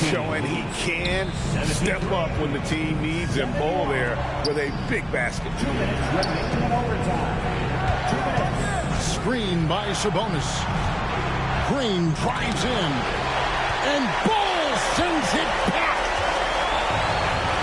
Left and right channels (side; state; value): both; identical; correlation 1.00